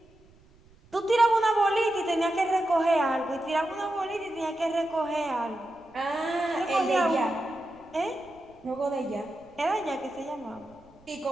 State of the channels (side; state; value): right; noise; rumble, 28 dB below the sound